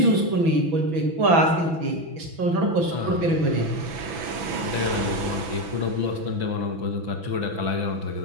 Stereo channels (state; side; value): late; left; 6.0 ms